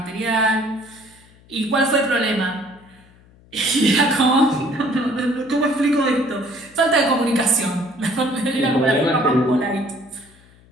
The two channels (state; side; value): noise; left; hum, 27 dB below the sound